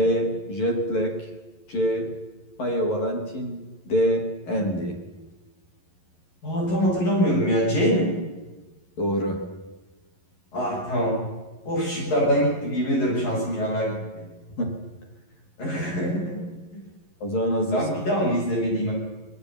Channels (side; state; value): right; late; 11 ms